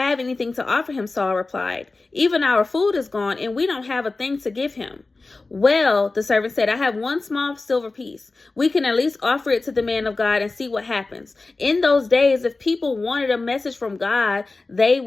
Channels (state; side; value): quieter; right; 3.5 dB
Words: anything to offer him," Saul replied. "Even our food is gone, and we don't have a thing to give him." "Well," the servant said, "I have one small silver piece. We can at least offer it to the man of God and see what happens. In those days, if people wanted a message from God, they